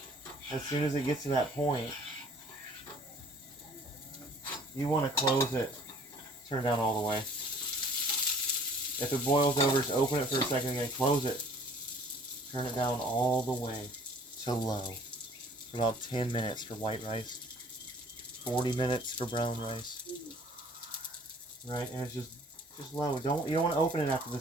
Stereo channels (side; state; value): both; normal; correlation 0.53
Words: as soon as it gets to that point, you want to close it, turn it down all the way. If it boils over, just open it for a second and then close it. Turn it down all the way to low for about 10 minutes for white rice. 40 minutes for brown rice. Right? And it's just low. You don't want to open it after